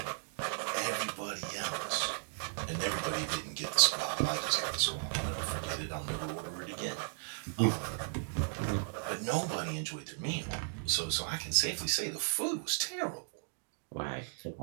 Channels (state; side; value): silent; left; digital silence